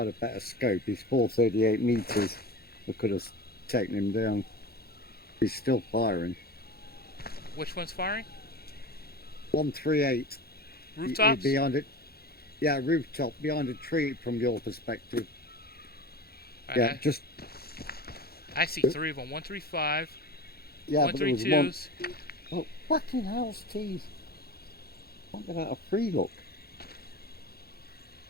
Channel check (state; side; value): late; right; 0.45 ms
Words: a better scope, he's 438 meters. I could have taken him down. He's still firing. Which one's firing? 138. Rooftops? Behind it. Yeah, rooftop, behind a tree from your perspective. Yeah, just... I see 3 of them. 135. Yeah, but there was 132s. one... Oh, fucking hell's teeth. Can't get out of free look.